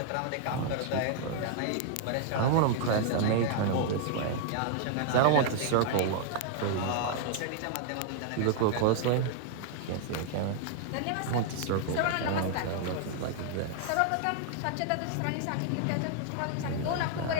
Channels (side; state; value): both; different; correlation 0.00